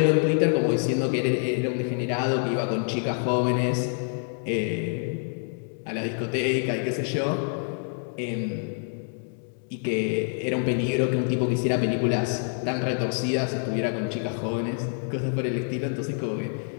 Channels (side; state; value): right; silent; 60 dB below the other